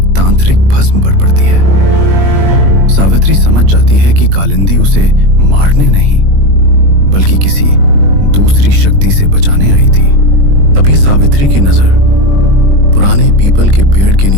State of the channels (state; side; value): late; left; 21 ms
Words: तांत्रिक भस्म पर पड़ती है। सावित्री समझ जाती है कि कालिंदी उसे मारने नहीं बल्कि किसी दूसरी शक्ति से बचाने आई थी। तभी सावित्री की नजर पुराने पीपल के पेड़ के